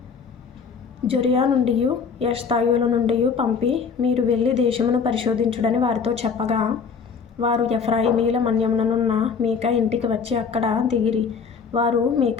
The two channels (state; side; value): quieter; right; 5.8 dB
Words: జొరియా నుండియు ఎష్తాయోల నుండియు పంపి, మీరు వెళ్ళి దేశమును పరిశోధించుడని వారితో చెప్పగా, వారు ఎఫ్రాయిమీల మన్యముననున్న మీకా ఇంటికి వచ్చి అక్కడ దిగిరి. వారు